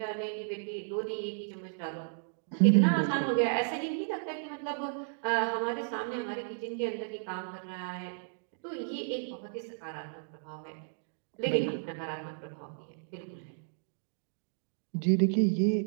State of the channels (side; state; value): left; silent; digital silence